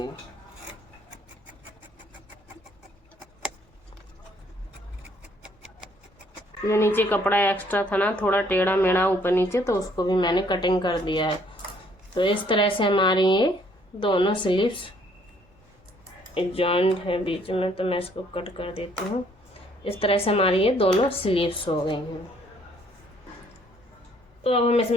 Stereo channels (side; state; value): both; normal; correlation 0.64